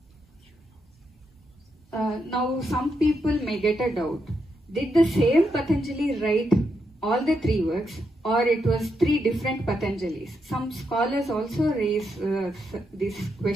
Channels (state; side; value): normal; both; correlation 0.82